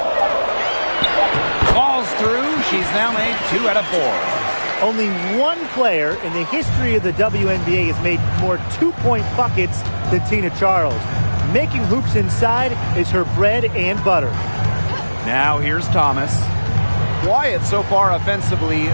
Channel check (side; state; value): both; inverted; correlation -1.00